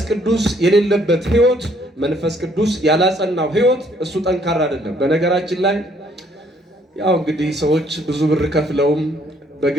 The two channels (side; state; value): both; normal; correlation 0.65